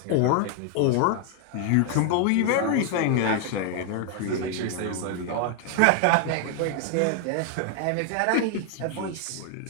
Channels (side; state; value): both; different; correlation 0.00